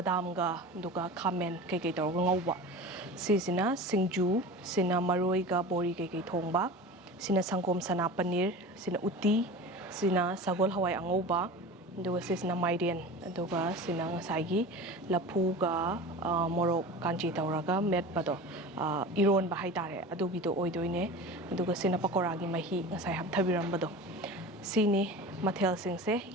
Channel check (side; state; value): both; normal; correlation 0.34